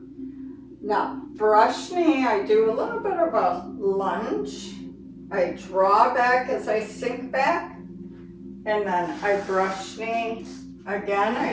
Now, brush knee, I do a little bit of a lunge. I draw back as I sink back, and then I brush knee. Again,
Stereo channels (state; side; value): identical; both; correlation 1.00